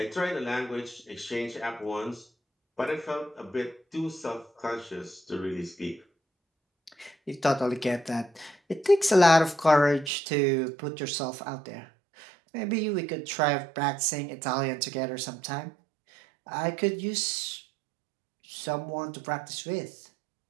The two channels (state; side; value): drops out; left; at 10.1 s